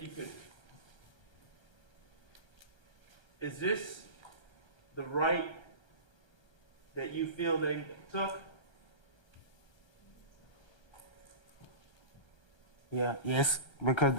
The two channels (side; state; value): right; late; 1.3 ms